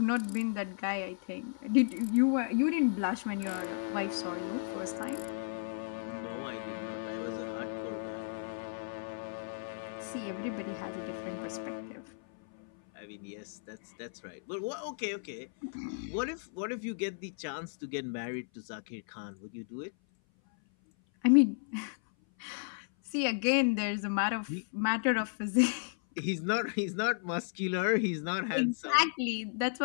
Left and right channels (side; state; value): right; silent; 55 dB below the other